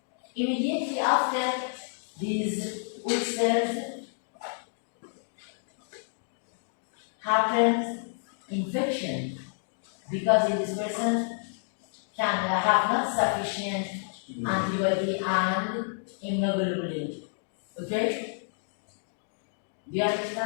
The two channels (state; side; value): silent; right; digital silence